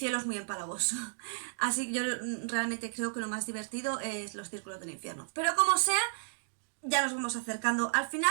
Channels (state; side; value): silent; left; digital silence